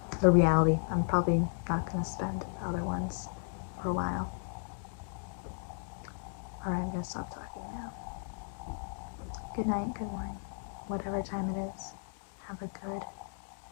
the reality. I'm probably not gonna spend the other ones for a while. Alright, I'm gonna stop talking now. Good night, good morning, whatever time it is. Have a good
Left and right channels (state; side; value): silent; right; digital silence